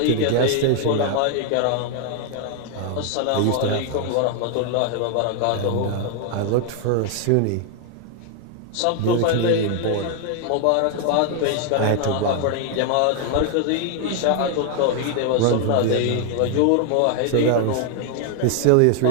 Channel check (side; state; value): both; different; correlation 0.00